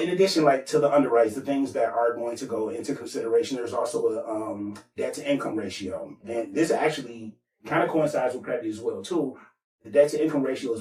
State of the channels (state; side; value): identical; both; correlation 1.00